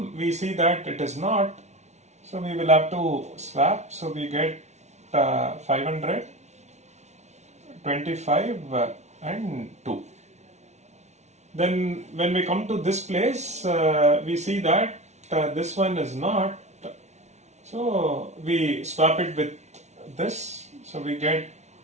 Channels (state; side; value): late; left; 0.32 ms